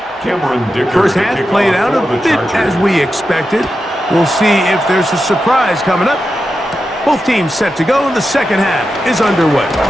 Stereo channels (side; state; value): both; normal; correlation 0.89